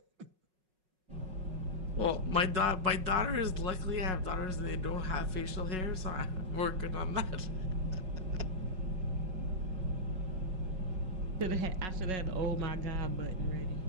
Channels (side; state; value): left; late; 5.4 ms